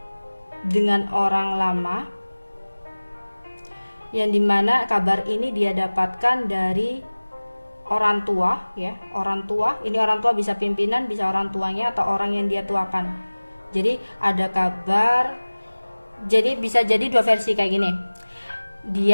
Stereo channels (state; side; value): inverted; both; correlation -1.00